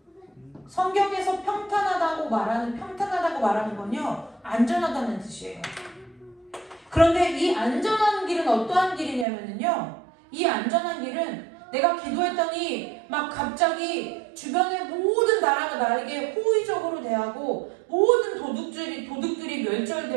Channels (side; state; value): left; drops out; at 9.2 s